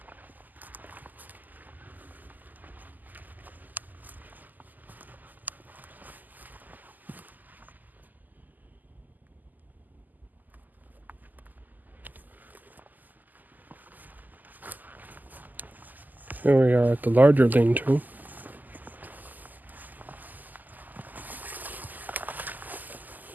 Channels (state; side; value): late; left; 0.084 ms